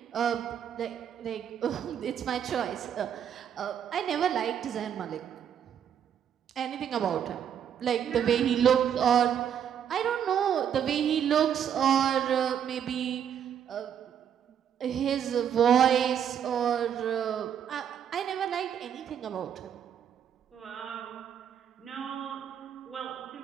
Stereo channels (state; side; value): quieter; left; 8.9 dB